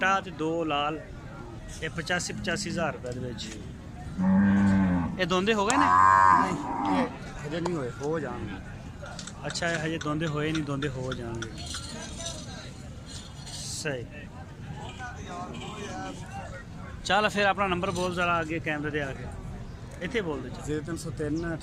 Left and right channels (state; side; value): identical; both; correlation 1.00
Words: ਤੇ 2 ਲਾਲ ਇਹ 85 ਹਜ਼ਾਰ ਰੁਪਏ ਦੇ ਵਿੱਚ। ਇਹ ਦੋਂਦੇ ਹੋ ਗਏ ਨੇ? ਨਹੀਂ ਇਹ ਹਜੇ ਨਹੀਂ ਹੋਏ, ਹੋ ਜਾਣਗੇ। ਅੱਛਾ ਇਹ ਹਜੇ ਦੋਂਦੇ ਹੋਏ ਨਹੀਂ, ਦੋਂਦੇ ਹੋ ਜਾਣਗੇ। ਸਹੀ। ਚੱਲ ਫਿਰ ਆਪਣਾ ਨੰਬਰ ਬੋਲ ਜ਼ਰਾ ਅੱਗੇ ਕੈਮਰੇ ਦੇ ਆ ਕੇ ਇੱਥੇ ਬੋਲ ਦੇ। 0303